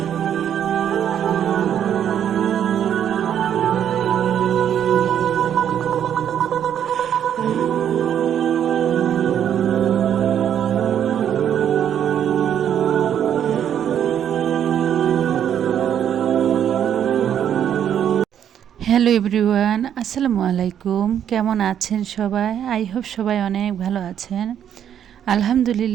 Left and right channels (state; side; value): quieter; left; 9.5 dB